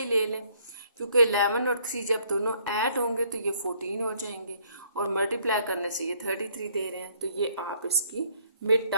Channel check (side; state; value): both; inverted; correlation -0.64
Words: ले लें, क्योंकि 11 और 3 जब दोनों ऐड होंगे तो ये 14 हो जाएंगे, और मल्टीप्लाई करने से ये 33 दे रहे हैं, तो ये आप इसकी मिड